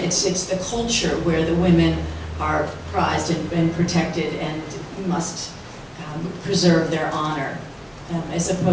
the culture where the women are prized and protected and must preserve their honor, as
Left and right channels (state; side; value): identical; both; correlation 1.00